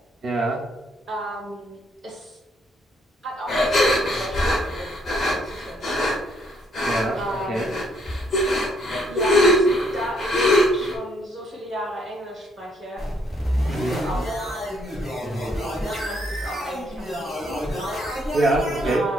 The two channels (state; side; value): normal; both; correlation 0.69